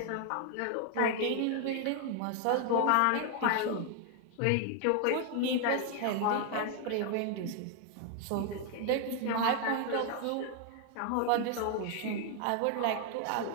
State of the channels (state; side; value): different; both; correlation 0.00